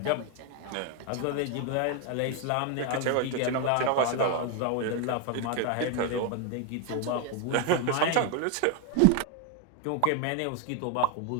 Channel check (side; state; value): both; different; correlation 0.01